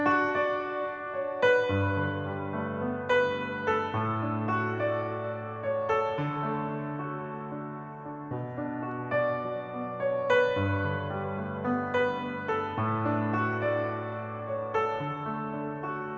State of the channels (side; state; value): both; identical; correlation 1.00